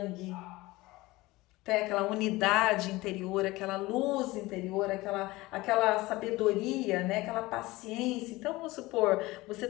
tem aquela unidade interior, aquela luz interior, aquela sabedoria, né? Aquela paciência. Então, vamos supor, você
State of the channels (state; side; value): quieter; right; 20.2 dB